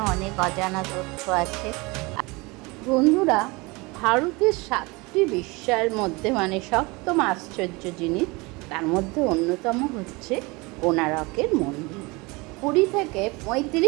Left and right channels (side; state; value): left; quieter; 25.2 dB